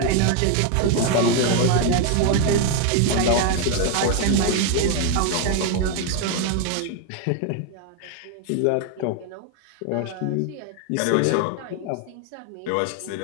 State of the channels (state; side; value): different; both; correlation 0.01